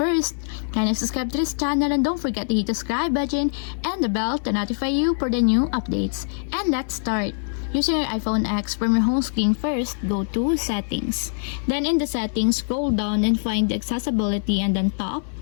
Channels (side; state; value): right; silent; digital silence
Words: kindly subscribe to this channel and don't forget to hit the subscribe button and the bell to notify you for the new updates. And let's start. Using your iPhone X, from your home screen first, go to Settings. Then in the Settings, scroll down and find the Accessibility and then Top.